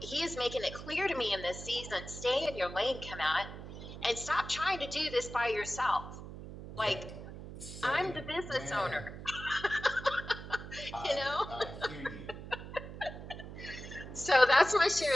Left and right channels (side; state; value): right; noise; hum, 11 dB below the sound